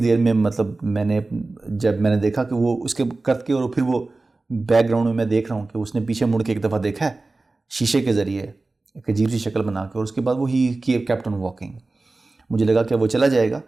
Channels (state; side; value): quieter; left; 3.3 dB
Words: دیر میں مطلب جب میں نے دیکھا کہ وہ اس کے کر کے، اور پھر وہ بیک گراؤنڈ میں دیکھ رہا ہوں کہ اس نے پیچھے مڑ کے ایک دفعہ دیکھا ہے شیشے کے ذریعے ایک عجیب سی شکل بنا کے، اور اس کے بعد وہ ہی کیپٹ آن واکنگ. مجھے لگا کہ وہ چلا جائے گا،